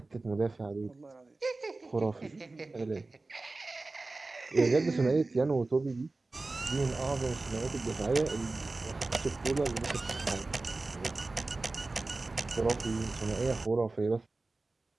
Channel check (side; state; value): left; quieter; 3.3 dB